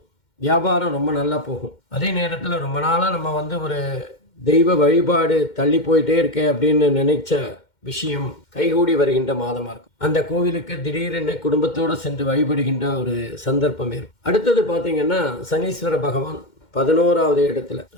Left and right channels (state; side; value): late; right; 2.1 ms